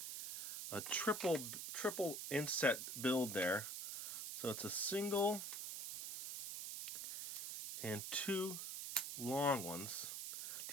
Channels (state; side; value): noise; right; hiss, 5 dB below the sound